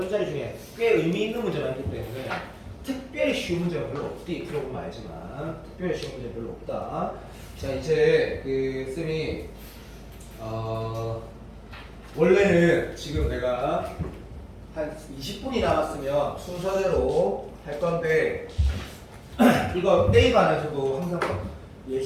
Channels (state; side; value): identical; both; correlation 1.00